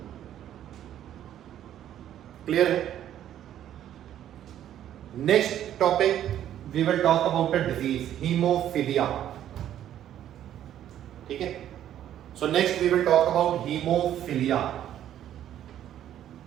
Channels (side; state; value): left; quieter; 11.2 dB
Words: क्लियर है? Next topic we will talk about a disease, haemophilia. ठीक है, so next we will talk about haemophilia.